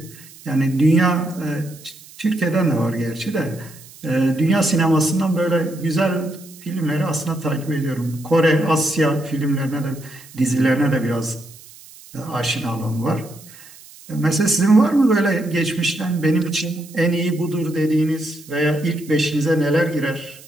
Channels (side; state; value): right; noise; hiss, 21 dB below the sound